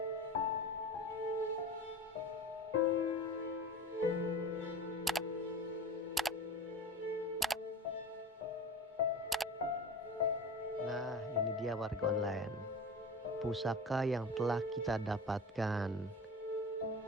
Nah, ini dia warga online. Pusaka yang telah kita dapatkan.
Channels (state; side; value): normal; both; correlation 0.34